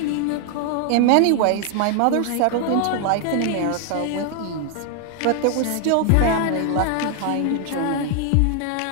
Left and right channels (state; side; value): different; both; correlation 0.00